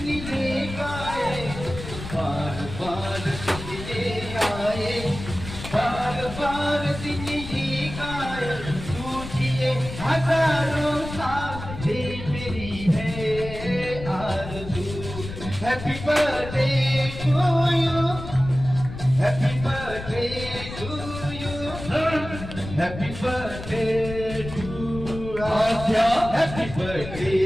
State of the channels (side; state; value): left; noise; rumble, 10 dB below the sound